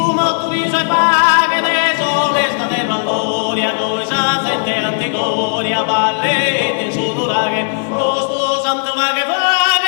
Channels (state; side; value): silent; right; digital silence